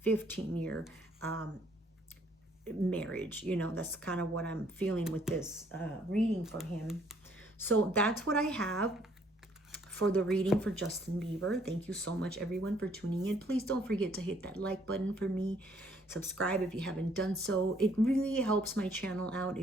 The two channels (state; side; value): normal; both; correlation 0.64